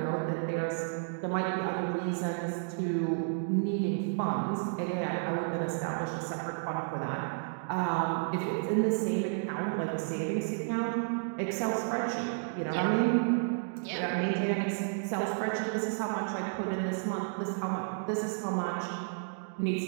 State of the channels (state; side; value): silent; left; digital silence